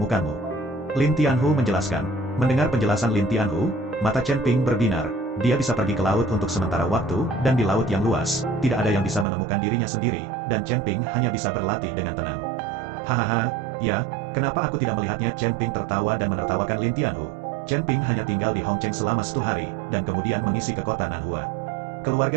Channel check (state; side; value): drops out; left; at 9.2 s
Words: Lin Tianhu menjelaskan. Mendengar penjelasan Lin Tianhu, mata Chen Ping berbinar. Dia bisa pergi ke laut untuk sementara waktu, dan di laut yang luas, tidak ada yang bisa menemukan dirinya sendiri, dan Chen Ping hanya bisa berlatih dengan tenang. Hahaha, ya, kenapa aku tidak melihatnya? Chen Ping tertawa dan menertawakan Lin Tianhu. Chen Ping hanya tinggal di Hongcheng selama 1 hari, dan kemudian mengisi ke kota Nanhua.